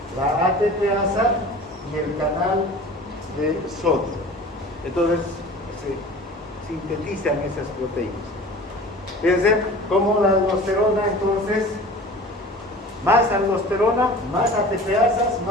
La ATPasa y el canal de sodio. Entonces se sintetizan esas proteínas. Fíjense cómo la aldosterona, entonces, más aldosterona, más ATPasas,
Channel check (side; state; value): both; normal; correlation 0.41